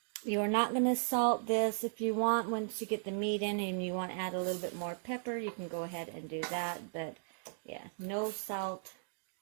You are not going to salt this. If you want, once you get the meat in and you want to add a little bit more pepper, you can go ahead and do that. But yeah, no salt.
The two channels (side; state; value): left; silent; digital silence